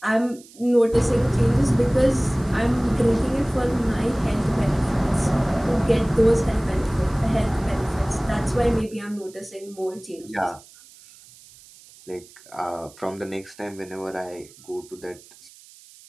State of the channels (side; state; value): right; noise; hiss, 23 dB below the sound